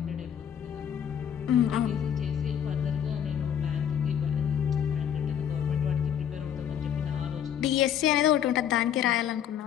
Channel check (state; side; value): quieter; right; 9.1 dB